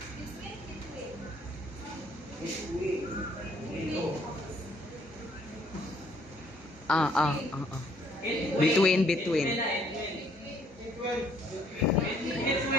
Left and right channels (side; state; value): both; normal; correlation 0.64